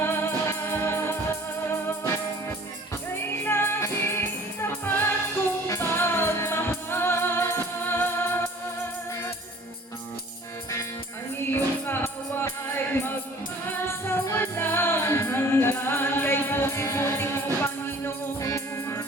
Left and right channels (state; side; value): normal; both; correlation 0.50